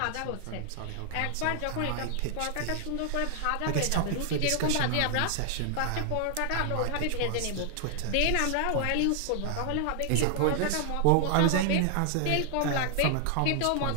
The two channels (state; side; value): different; both; correlation 0.00